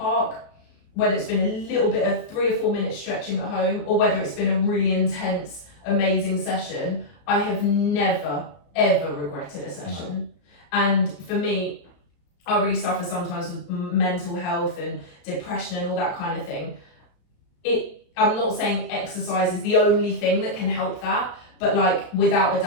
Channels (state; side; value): late; right; 34 ms